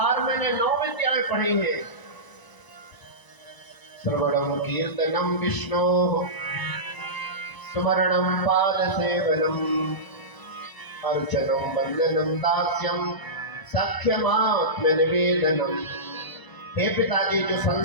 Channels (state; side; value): late; right; 1.0 ms